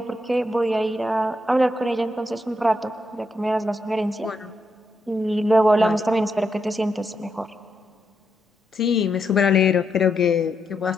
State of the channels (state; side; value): normal; both; correlation 0.81